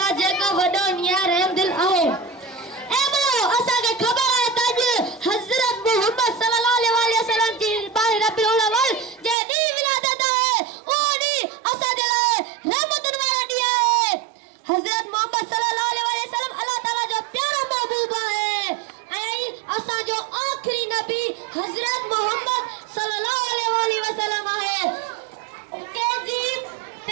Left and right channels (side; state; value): left; drops out; at 9.3 s